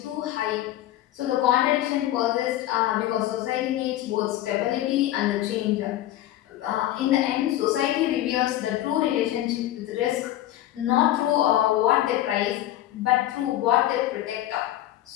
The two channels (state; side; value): quieter; right; 13.8 dB